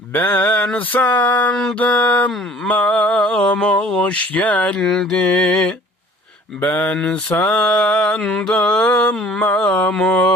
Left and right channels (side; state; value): both; normal; correlation 0.50